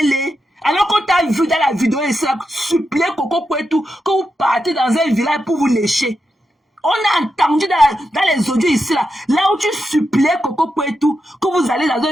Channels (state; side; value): normal; both; correlation 0.87